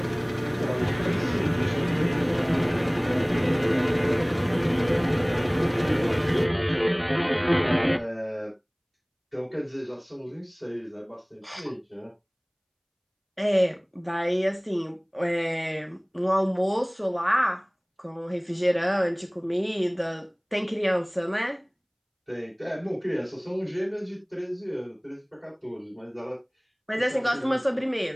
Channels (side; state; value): both; identical; correlation 1.00